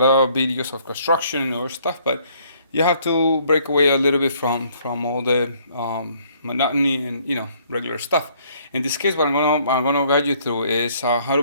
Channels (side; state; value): both; inverted; correlation -0.63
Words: of videos of construction or stuff, but you have to break away a little bit from all the monotony and regular stuff. In this case, what I'm gonna guide you through is how to